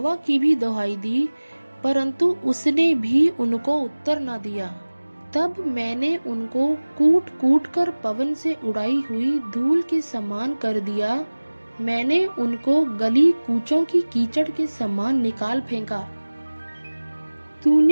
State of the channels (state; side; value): inverted; both; correlation -1.00